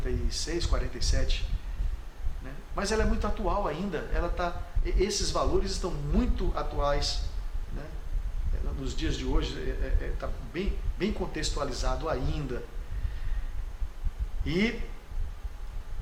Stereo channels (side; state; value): both; identical; correlation 1.00